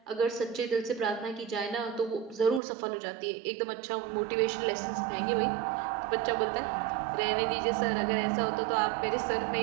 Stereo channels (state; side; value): drops out; left; at 2.6 s